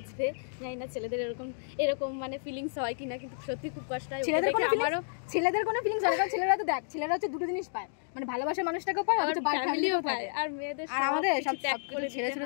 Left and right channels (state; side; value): silent; right; digital silence